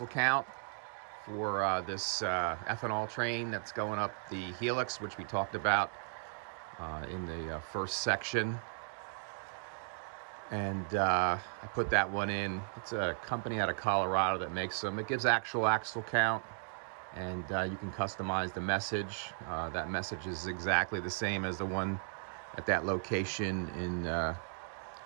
count for this ethanol train that's going up the Helix, which we talked about in the first section. And I put that one in. It's a company out of Colorado that makes them. It gives actual axle count, and you can customize the message. That message is exactly the same as the one at that location in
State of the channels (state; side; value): silent; left; digital silence